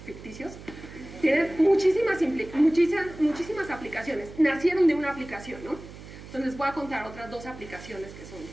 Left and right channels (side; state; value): right; noise; hum, 15 dB below the sound